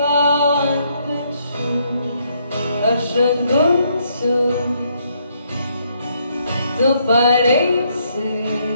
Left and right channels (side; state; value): both; inverted; correlation -0.72